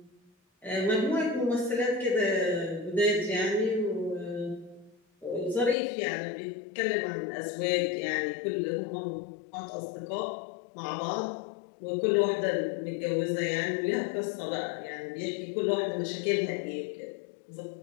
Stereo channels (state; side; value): drops out; right; at 5.8 s